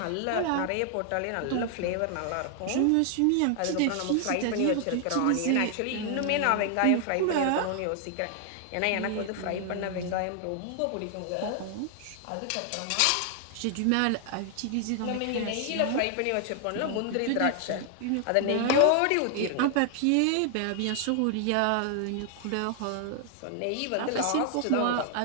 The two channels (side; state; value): both; different; correlation 0.00